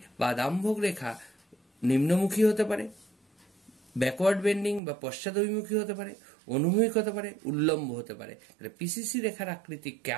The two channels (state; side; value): drops out; left; at 4.8 s